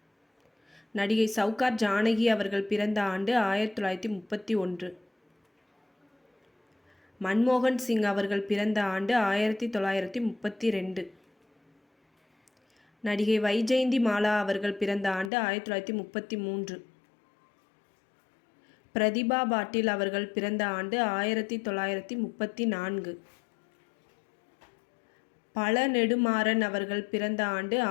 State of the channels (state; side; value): drops out; right; at 15.3 s